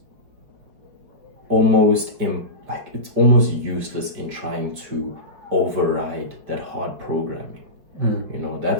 almost it's almost useless in trying to override that hard programming.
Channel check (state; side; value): late; left; 5.4 ms